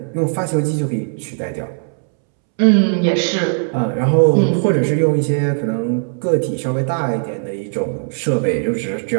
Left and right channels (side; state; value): left; silent; 67 dB below the other